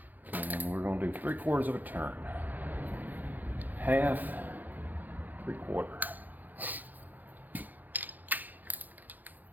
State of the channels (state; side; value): late; left; 0.084 ms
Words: And we're going to do 3/4 of a turn. Half, 3/4.